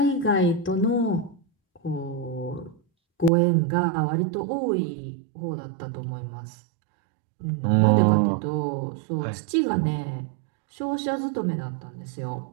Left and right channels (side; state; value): left; drops out; at 3.3 s